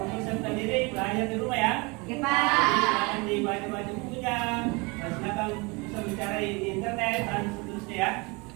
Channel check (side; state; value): left; quieter; 27.6 dB